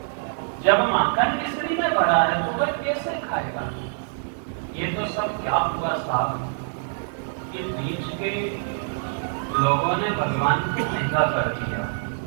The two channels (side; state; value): left; silent; digital silence